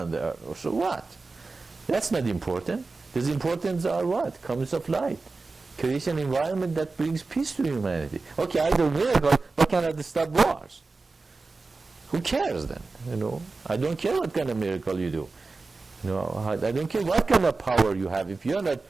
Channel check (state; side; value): quieter; left; 3.8 dB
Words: the earth. So what? That's not important. The importance are what? Comes of light. Create an environment that brings peace to humanity. Okay, I do miracles, but can I stop wars? Who cares then? I don't care what kind of miracle you do. I don't care what kind of power you have. If you're not